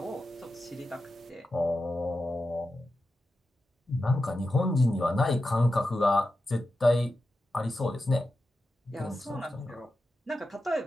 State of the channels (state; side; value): normal; both; correlation 0.91